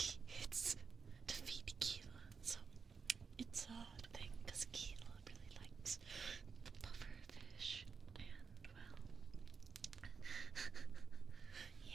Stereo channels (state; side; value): quieter; left; 5.5 dB